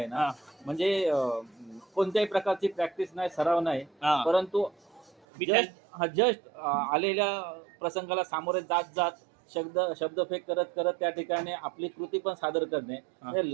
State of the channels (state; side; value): drops out; left; at 5.1 s